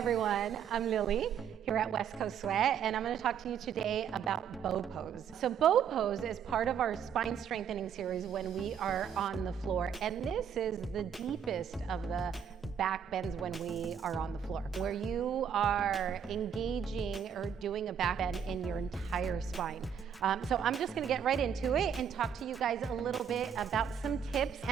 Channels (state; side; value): quieter; left; 8.0 dB